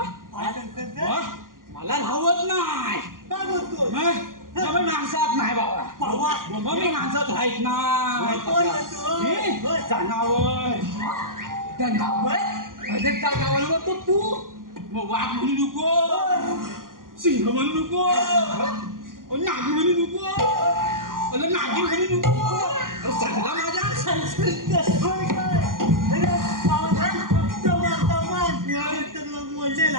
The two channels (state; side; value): late; left; 0.90 ms